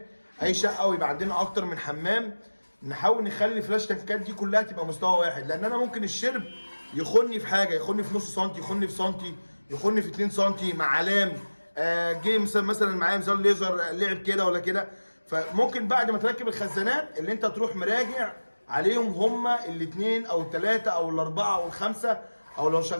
اي شقه ويبقى عندنا اكتر من حمام، نحاول نخلي الفلاش تانكات دي كلها تبقى مستوى واحد، لان انا ممكن الشرب يخني في حاجه، يخني في نص سنتي، يخني في سنتي، يخني في 2 سنتي مع علام جه مثلا معايا ميزان ليزر لعب كده ولا كده. فممكن بعد ما تركب الخزانات اللي انت تروح مراجع عليهم هما الاثنين او الثلاثه او الاربعه او الخمسه، او لو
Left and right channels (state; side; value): inverted; both; correlation -1.00